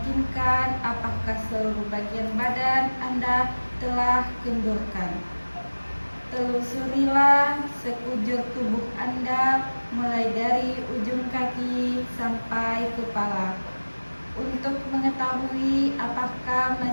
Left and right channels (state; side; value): inverted; both; correlation -1.00